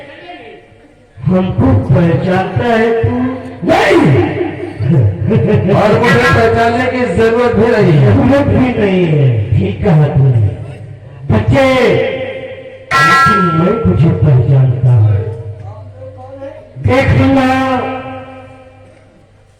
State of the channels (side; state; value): both; identical; correlation 1.00